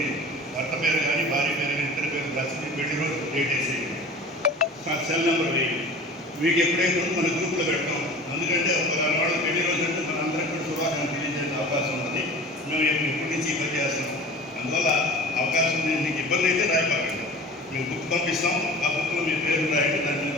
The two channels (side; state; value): both; normal; correlation 0.40